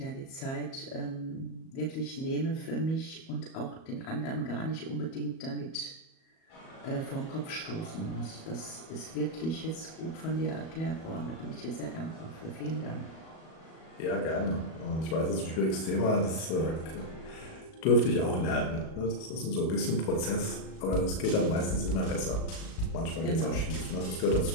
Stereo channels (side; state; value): right; late; 37 ms